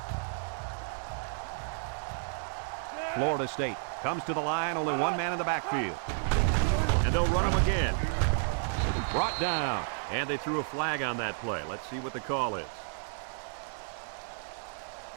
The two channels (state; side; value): silent; left; digital silence